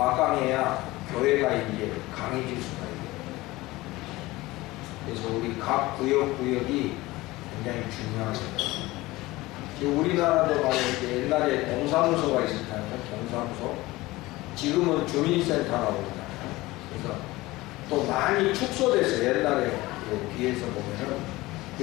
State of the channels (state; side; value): quieter; right; 19.6 dB